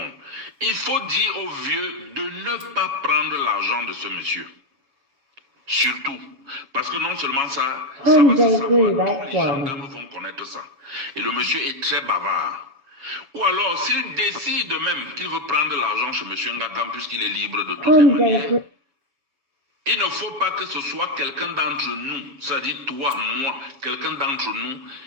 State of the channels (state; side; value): late; left; 7.1 ms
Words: Il faut dire aux vieux de ne pas prendre l'argent de ce monsieur. Surtout. Parce que non seulement ça va se savoir, tous les gendarmes vont connaître ça. Et le monsieur est très bavard. Ou alors, s'il décide même qu'il veut prendre de l'argent chez monsieur Ngakam, puisqu'il est libre de toutes les manières, il ne faut pas que ce soit quelqu'un d'entre nous, c'est-à-dire toi, moi, quelqu'un d'entre nous,